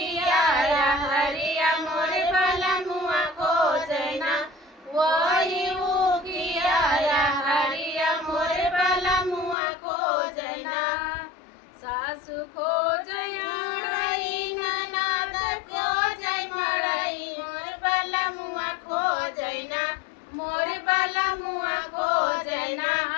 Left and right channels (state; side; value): drops out; right; at 9.6 s